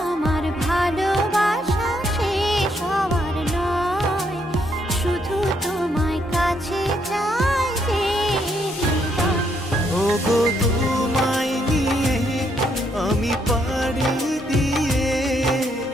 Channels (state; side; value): normal; both; correlation 0.74